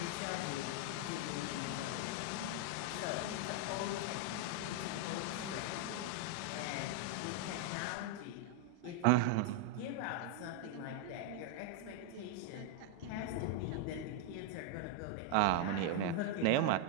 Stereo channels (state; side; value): different; both; correlation 0.00